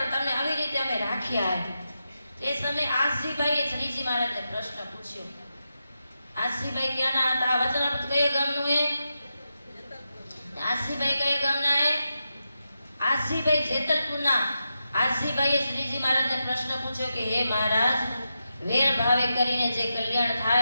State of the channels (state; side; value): inverted; both; correlation -0.88